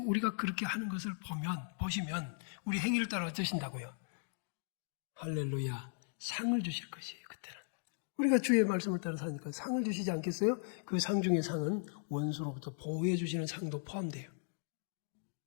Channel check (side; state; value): right; silent; digital silence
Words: 그렇게 하는 것을 보시면 우리 행위를 따라 어쩌신다고요? 할렐루야. 상을 주실 것이에요. 그때는. 우리가 주의 말씀을 따라 사니까 상을 주시지 않겠어요? 그 상 중에 상은 원수로부터 보호해 주시는 상도 포함돼요.